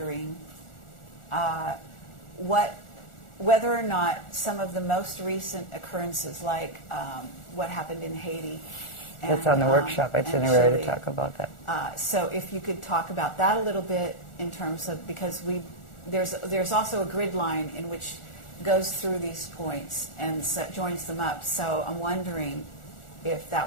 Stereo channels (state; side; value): late; right; 1.4 ms